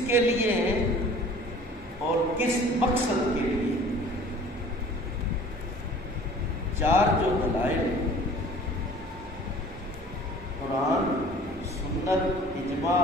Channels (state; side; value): normal; both; correlation 0.48